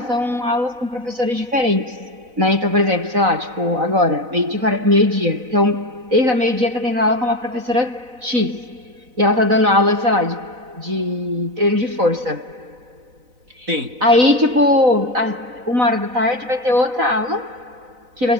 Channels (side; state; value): left; late; 4.0 ms